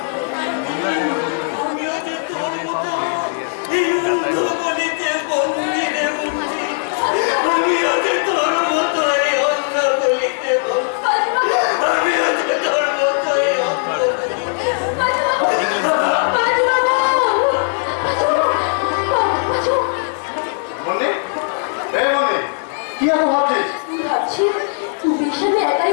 আমিও যে তোর মতো এই অন্ধ গলিতে বন্দি রে বন্দি। আমিও যে তোর মতো এই অন্ধ গলিতে বন্দি। আমিও যে তোর মতো এই অন্ধ গলিতে মনে এ মনে কি এত ভাবছিস? ভাবছি তুমি সামনে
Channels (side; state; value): right; silent; 63 dB below the other